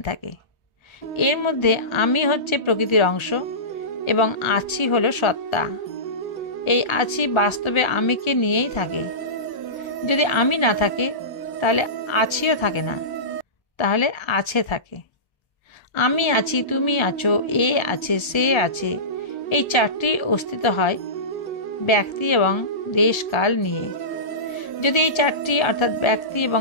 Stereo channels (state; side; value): late; right; 1.3 ms